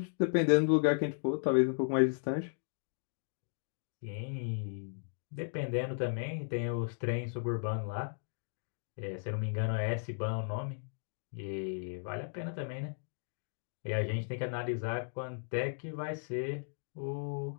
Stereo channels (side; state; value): right; silent; digital silence